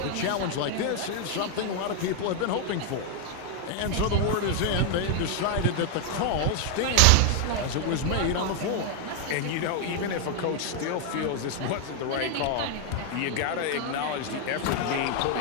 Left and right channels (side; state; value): both; different; correlation 0.00